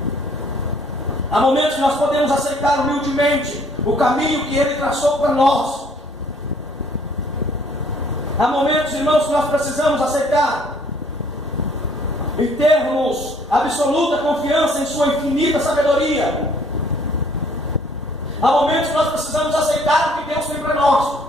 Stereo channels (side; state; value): both; normal; correlation 0.61